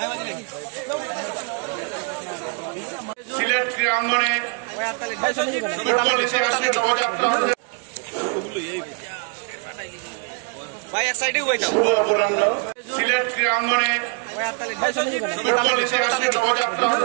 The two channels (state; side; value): quieter; left; 36.1 dB